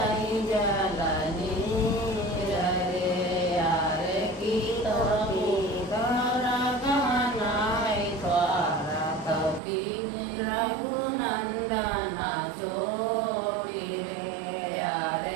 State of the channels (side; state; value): left; drops out; at 9.6 s